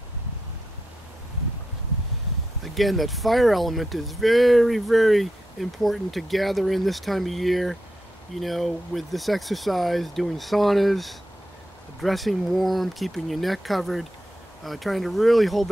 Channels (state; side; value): normal; both; correlation 0.86